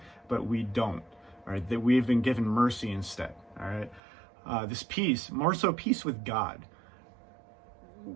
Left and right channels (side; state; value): left; drops out; at 4.0 s